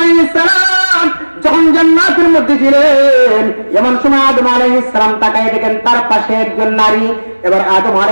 সালাম যখন জান্নাতের মধ্যে ছিলেন, এমন সময় আদম আলাইহিস সালাম তাকায় দেখেন তার পাশে একজন নারী। এবার আদম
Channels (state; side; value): inverted; both; correlation -1.00